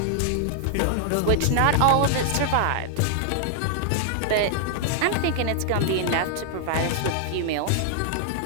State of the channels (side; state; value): both; different; correlation -0.01